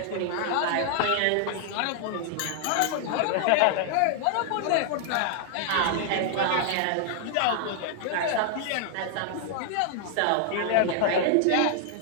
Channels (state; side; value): different; both; correlation 0.00